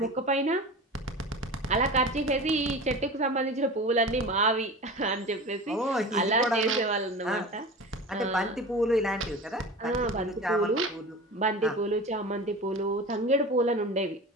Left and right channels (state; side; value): normal; both; correlation 0.33